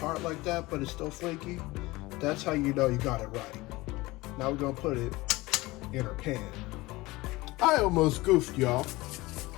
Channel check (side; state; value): right; quieter; 20.8 dB